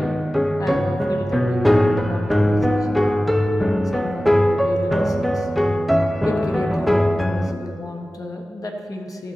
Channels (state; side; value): normal; both; correlation 0.96